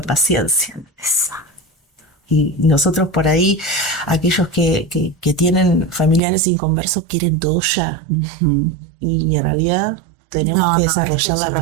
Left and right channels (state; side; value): drops out; left; at 6.2 s